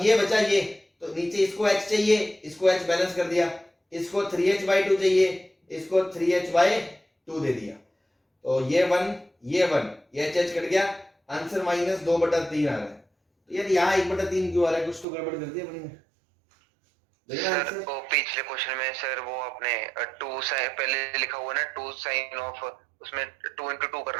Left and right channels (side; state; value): left; drops out; at 15.1 s